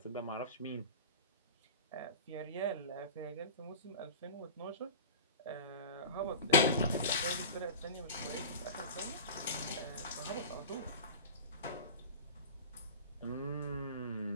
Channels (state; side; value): inverted; both; correlation -0.33